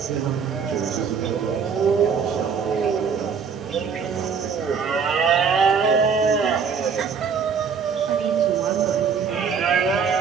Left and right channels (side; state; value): left; quieter; 6.2 dB